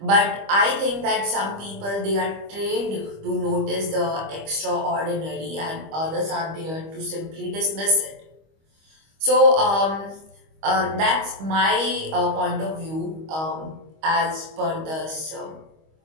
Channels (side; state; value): left; late; 25 ms